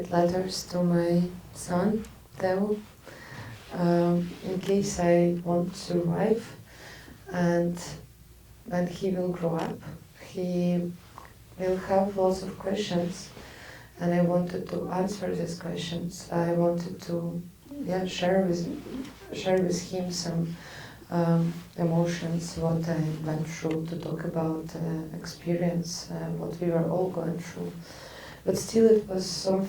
letters to my son, Théo, in case I won't survive. And when he will grow up, he will have lots of questions, and I wanted to answer these questions. I wanted to share with him some emotions, what I went through, to talk about experience, what we were all going through. But still it was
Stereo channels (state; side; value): identical; both; correlation 1.00